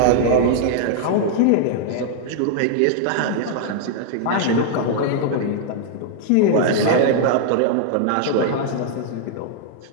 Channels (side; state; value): both; different; correlation 0.00